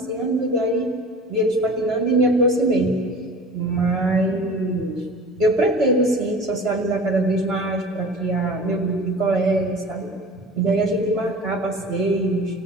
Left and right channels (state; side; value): normal; both; correlation 0.40